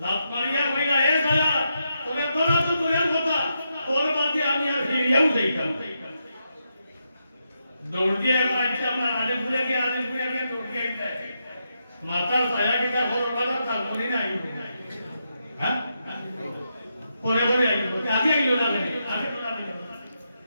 লাভ মারিয়া কইলা হে ছায়া তোরে দৌড়া তো দূরের কথা তোর বাদে আমি আর ফিরিয়াও যাইতাম দৌড় দিয়ে আজকে আমরা আলিপুরে গিয়ে দৌড় দিয়ে মাথার ছায়া কিনা খবর পালা তার মনে নাই হ্যাঁ পরে আইব আগে আইলো না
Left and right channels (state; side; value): inverted; both; correlation -0.84